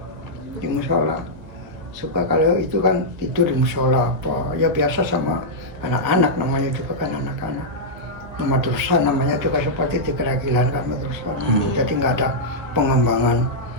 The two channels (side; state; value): left; late; 1.7 ms